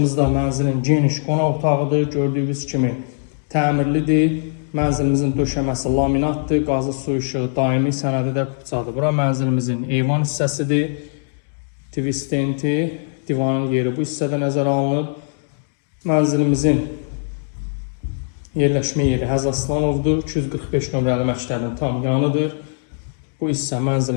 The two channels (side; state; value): right; silent; digital silence